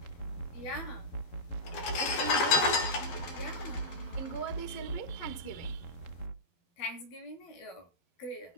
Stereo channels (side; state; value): right; late; 12 ms